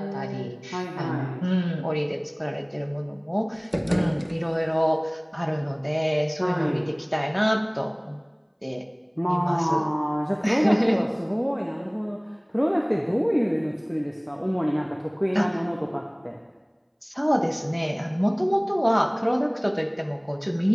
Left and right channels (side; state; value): both; identical; correlation 1.00